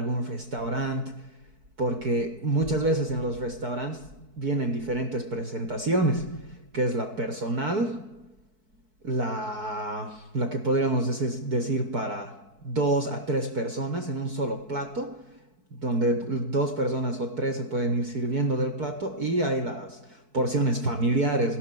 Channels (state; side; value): late; left; 4.6 ms